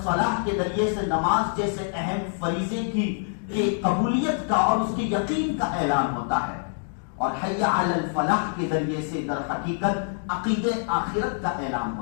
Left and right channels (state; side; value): silent; right; digital silence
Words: کے ذریعے سے نماز جیسے اہم فریضے کی قبولیت کا اور اس کے یقین کا اعلان ہوتا ہے، اور حی علی الفلاح کے ذریعے سے در حقیقت عقیدہ آخرت کا اعلان